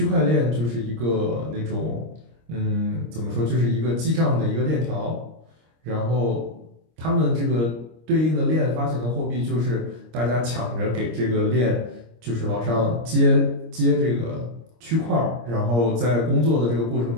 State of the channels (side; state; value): left; late; 25 ms